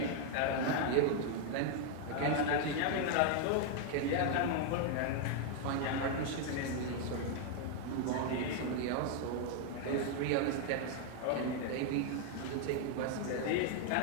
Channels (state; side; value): different; both; correlation 0.00